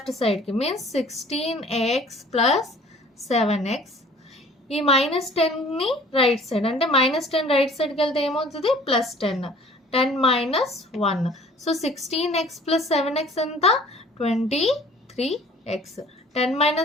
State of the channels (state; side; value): normal; both; correlation 0.50